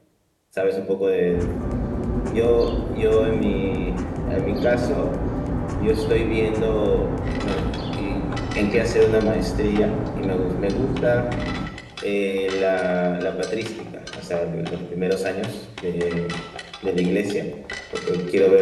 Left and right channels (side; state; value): both; identical; correlation 1.00